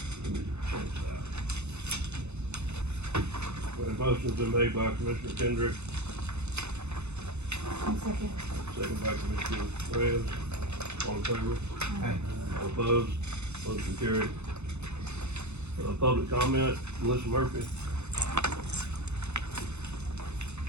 Change that. When a motion's been made by Commissioner Kendrick, Second. second by Commissioner Reyes. All in favor? Aye. All opposed? Motion carried. Public comment, Melissa Murphy.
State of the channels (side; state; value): left; late; 0.81 ms